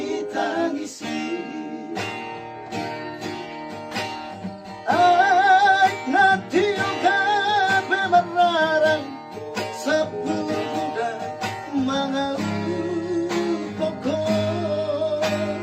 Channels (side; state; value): both; identical; correlation 1.00